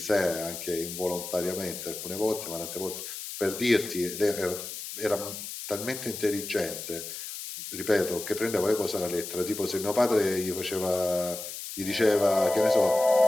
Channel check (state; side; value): noise; left; hiss, 8 dB below the sound